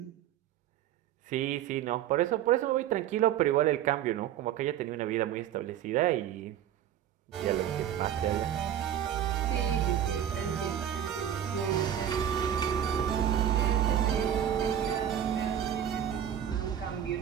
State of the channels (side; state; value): left; quieter; 10.3 dB